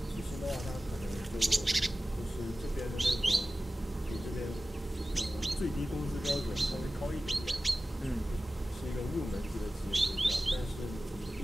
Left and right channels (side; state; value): both; normal; correlation 0.95